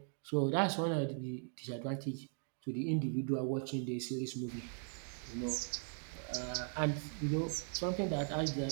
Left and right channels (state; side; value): silent; left; 52 dB below the other